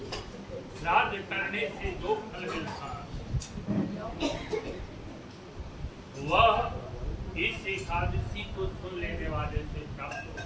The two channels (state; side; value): identical; both; correlation 1.00